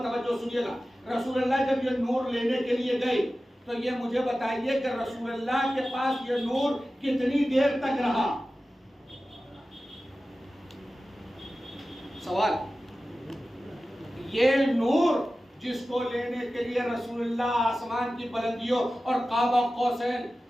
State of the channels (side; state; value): both; normal; correlation 0.95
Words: توجہ سنیے گا۔ رسول اللہ جب یہ نور لینے کے لیے گئے تو یہ مجھے بتائیے کہ رسول اللہ کے پاس یہ نور کتنی دیر تک رہا؟ سوال۔ یہ نور جس کو لینے کے لیے رسول اللہ آسمان کی بلندیوں اور قاب قوسین